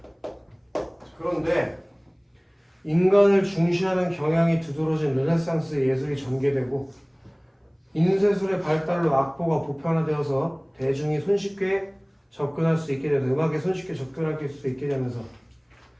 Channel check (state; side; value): identical; both; correlation 1.00